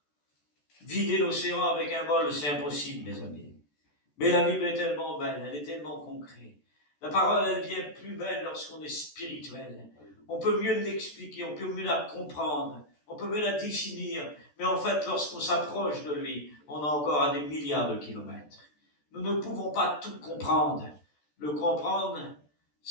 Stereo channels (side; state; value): right; late; 14 ms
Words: vider l'océan avec un bol, c'est impossible, mes amis. Mais la Bible est tellement belle, elle est tellement concrète. La parole, elle devient plus belle lorsqu'on est spirituel. On peut mieux l'expliquer, on peut mieux la comprendre, on peut mieux la définir, mais en fait, lorsqu'on s'approche de lui, on est encore à des milliards de kilomètres. Nous ne pouvons pas tout comprendre. Le comprendre,